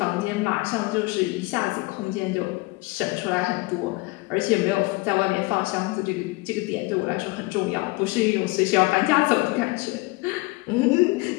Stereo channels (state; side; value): quieter; right; 23.5 dB